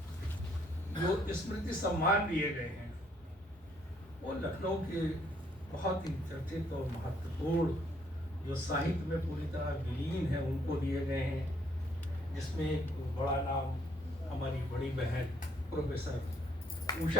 जो स्मृति सम्मान दिए गए हैं, वो लखनऊ के बहुत ही चर्चित और महत्वपूर्ण जो साहित्य में पूरी तरह विलीन है उनको दिए गए हैं, जिसमें एक बड़ा नाम हमारी बड़ी बहन प्रोफेसर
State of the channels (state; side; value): normal; both; correlation 0.68